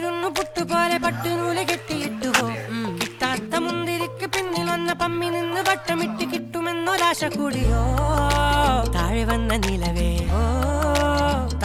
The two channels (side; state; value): both; identical; correlation 1.00